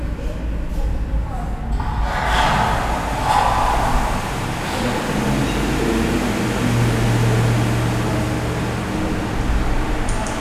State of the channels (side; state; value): both; identical; correlation 1.00